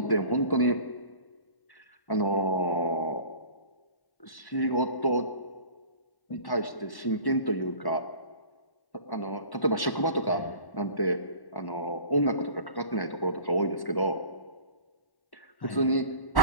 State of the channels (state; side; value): late; right; 1.1 ms